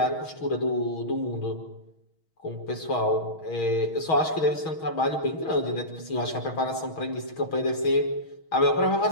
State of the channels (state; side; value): late; right; 6.3 ms